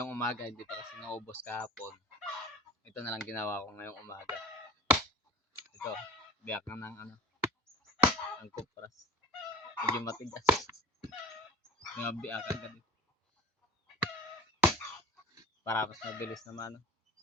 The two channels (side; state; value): both; normal; correlation 0.43